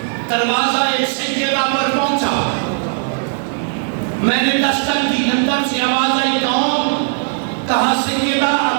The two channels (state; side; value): silent; left; 55 dB below the other